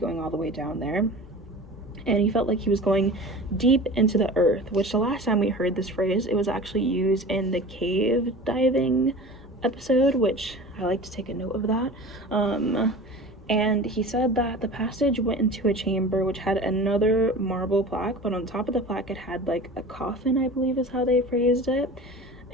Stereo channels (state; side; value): normal; both; correlation 0.37